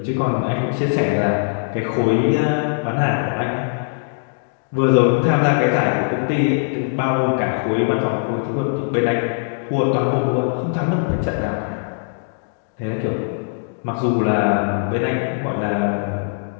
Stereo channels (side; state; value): right; silent; digital silence